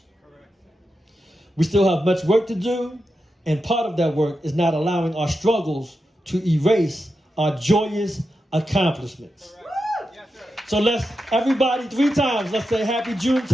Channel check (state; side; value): normal; both; correlation 0.88